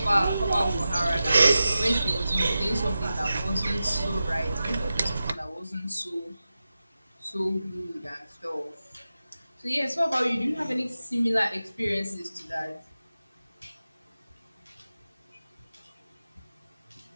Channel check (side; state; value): both; inverted; correlation -0.93